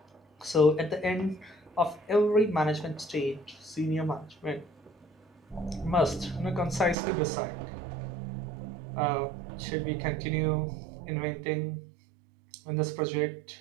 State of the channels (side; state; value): left; drops out; at 7.0 s